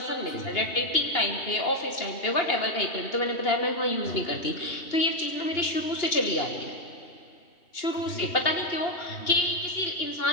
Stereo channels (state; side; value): late; right; 2.8 ms